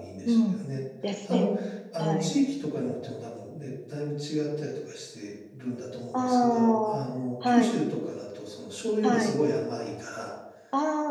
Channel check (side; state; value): both; identical; correlation 1.00